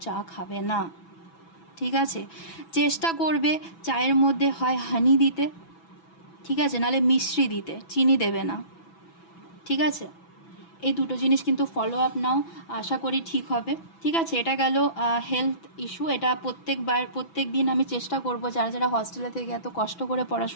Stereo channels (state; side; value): late; right; 6.0 ms